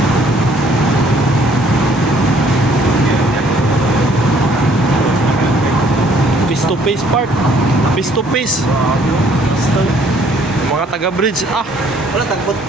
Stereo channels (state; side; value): normal; both; correlation 0.61